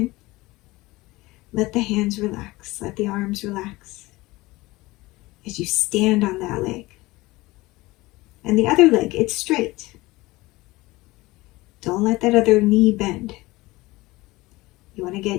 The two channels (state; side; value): quieter; right; 20.5 dB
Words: Let the hands relax. Let the arms relax as you stand on that leg. And the other leg, it's straight. Don't let that other knee bend. You want to